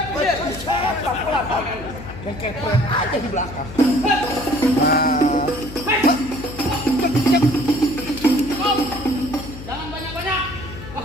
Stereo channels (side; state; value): left; noise; hum, 12 dB below the sound